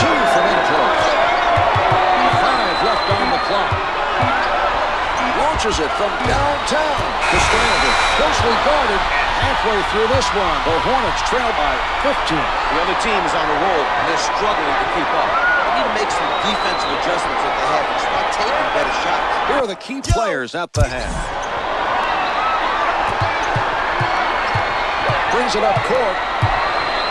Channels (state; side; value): identical; both; correlation 1.00